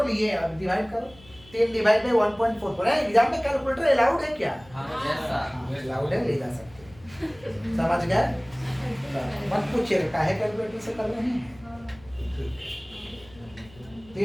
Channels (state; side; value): noise; left; hum, 24 dB below the sound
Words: लिए, अब डिवाइड करो। 3 डिवाइड बाई 1.44 है। एग्जाम में कैलकुलेटर अलाउड है क्या? अलाउड है, ले जा सकते हैं, समझ गए? मत पूछिएगा काहे कैलकुलेटर से कर रहे हैं।